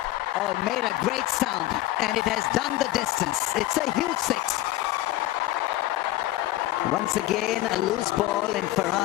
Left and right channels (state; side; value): quieter; right; 15.8 dB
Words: Oh, it made a great sound, and it has done the distance. It's a huge 6. Once again, a loose ball, and